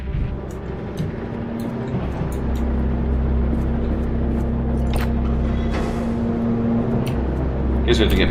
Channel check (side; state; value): both; identical; correlation 1.00